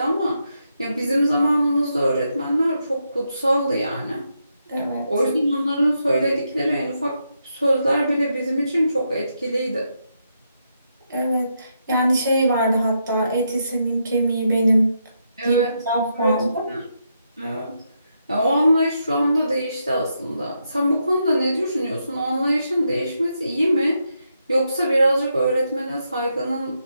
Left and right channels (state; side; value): inverted; both; correlation -0.82